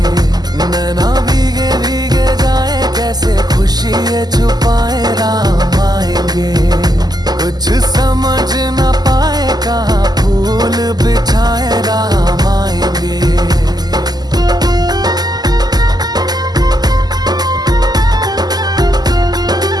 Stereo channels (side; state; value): left; late; 0.20 ms